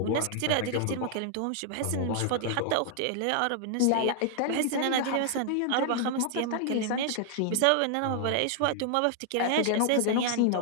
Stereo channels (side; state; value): both; different; correlation 0.00